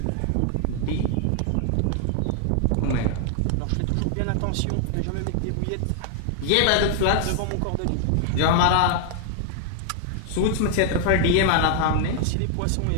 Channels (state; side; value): different; both; correlation 0.00